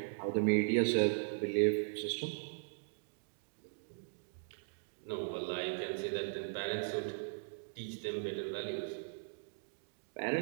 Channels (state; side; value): silent; left; digital silence